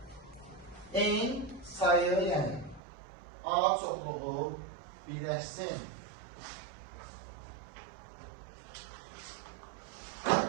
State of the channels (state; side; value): drops out; left; at 2.8 s